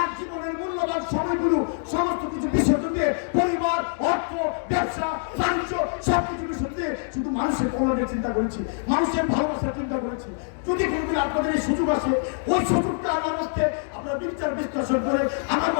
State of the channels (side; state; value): right; silent; digital silence